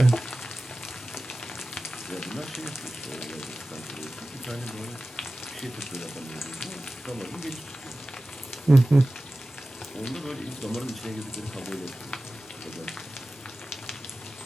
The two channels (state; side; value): normal; both; correlation 0.96